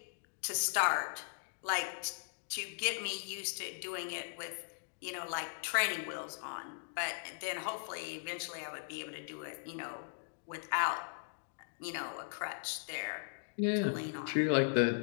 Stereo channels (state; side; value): silent; right; digital silence